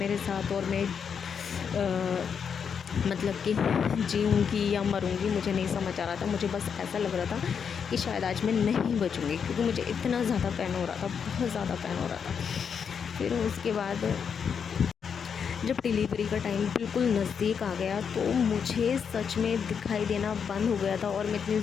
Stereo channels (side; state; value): right; quieter; 6.9 dB